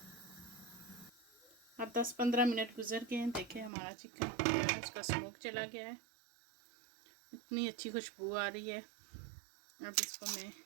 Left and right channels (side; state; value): left; drops out; at 3.7 s